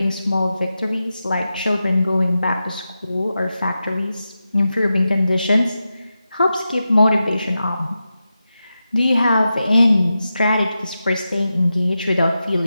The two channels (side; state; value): both; inverted; correlation -0.91